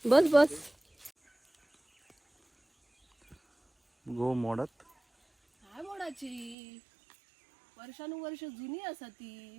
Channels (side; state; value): left; drops out; at 6.6 s